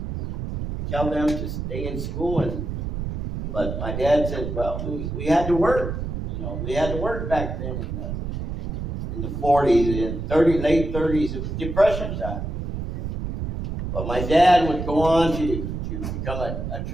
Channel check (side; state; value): right; noise; rumble, 4 dB below the sound